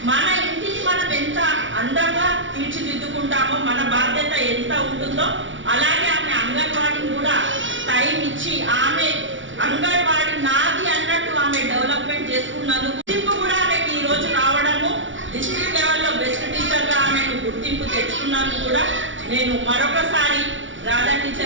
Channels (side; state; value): left; late; 0.56 ms